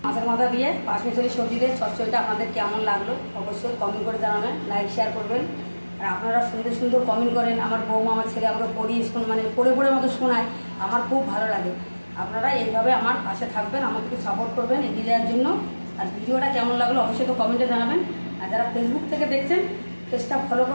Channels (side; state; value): both; inverted; correlation -1.00